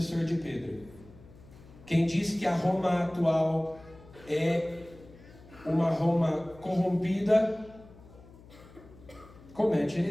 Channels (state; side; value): noise; left; hum, 22 dB below the sound